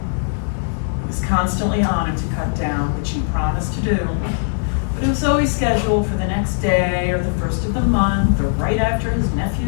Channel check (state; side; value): silent; right; 66 dB below the other